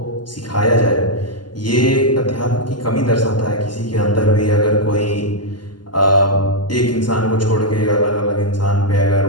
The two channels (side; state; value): right; late; 0.71 ms